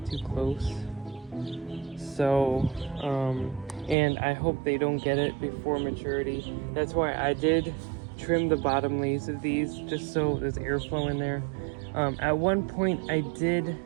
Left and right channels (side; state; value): left; drops out; at 4.0 s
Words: too close. So, and I hope they don't get it before maturity. That's why I did trim the bottom leaves of these, just so there's airflow in there. At one point I did